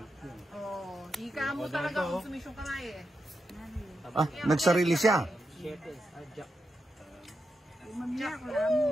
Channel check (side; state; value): both; normal; correlation 0.87